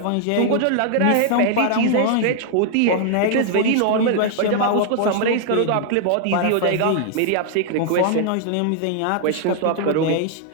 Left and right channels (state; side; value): different; both; correlation 0.00